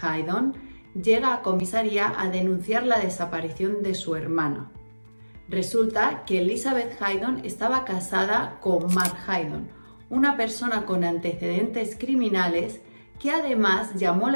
Haydon llega a comisaría a denunciar la desaparición de su hermana. Resulta que Elizabeth Haydon estaba casada con Mark Haydon, una persona con antecedentes criminales que además llamó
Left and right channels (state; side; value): inverted; both; correlation -1.00